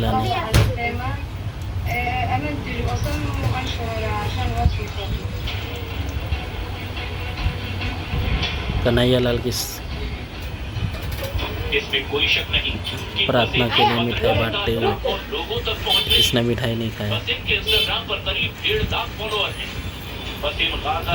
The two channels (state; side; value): identical; both; correlation 1.00